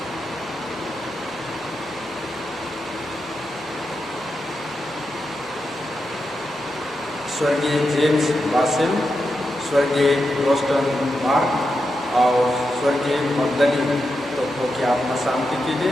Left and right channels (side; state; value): both; normal; correlation 0.87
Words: स्वर्गीय जेम्स बासिल, स्वर्गीय रोस्टन मार्क और स्वर्गीय मगदली तो की आत्मा शांति के